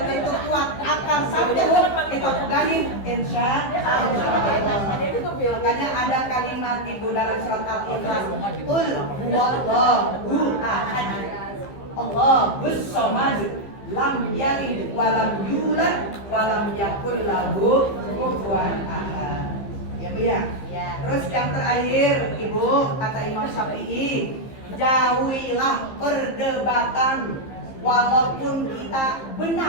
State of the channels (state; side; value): late; right; 15 ms